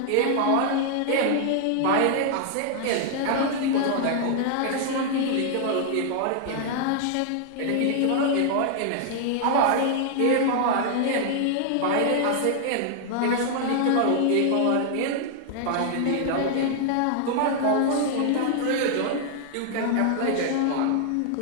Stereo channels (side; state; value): both; different; correlation 0.00